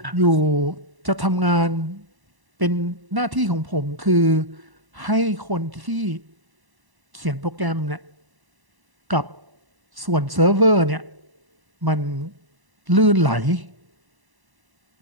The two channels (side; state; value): left; late; 1.0 ms